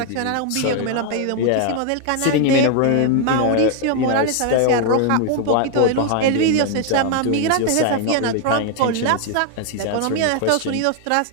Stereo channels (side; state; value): both; different; correlation 0.00